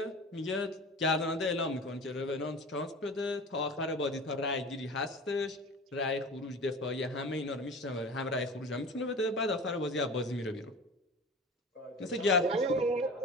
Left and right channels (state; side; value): normal; both; correlation 0.36